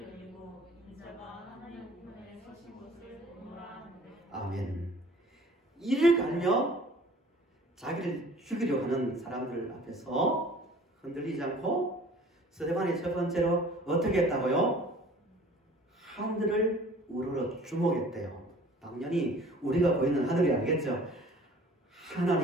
열리고 인자가 하나님 우편에 서신 것을 보노라 하는데. 아멘. 이를 갈며 자기를 죽이려 하는 사람들 앞에서 흔들리지 않고 스데반이 첫 번째로 어떻게 했다고요? 하늘을 우러러 주목했대요. 당연히 우리가 보이는 하늘이 아니겠죠.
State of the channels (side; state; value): both; normal; correlation 0.49